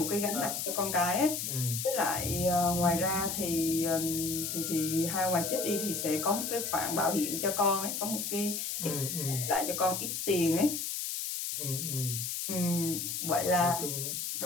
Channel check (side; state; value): left; noise; hiss, 3 dB below the sound